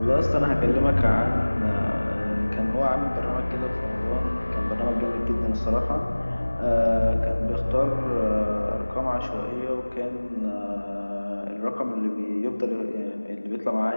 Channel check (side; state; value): both; inverted; correlation -1.00